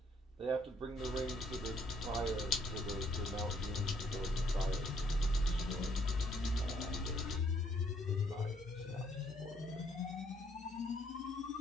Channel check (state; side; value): normal; both; correlation 0.67